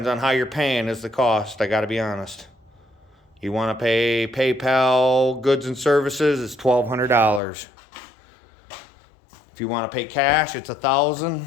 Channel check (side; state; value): right; drops out; at 7.4 s